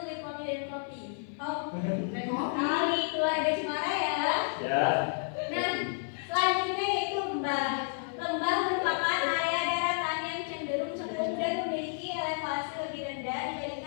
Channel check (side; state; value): right; silent; 56 dB below the other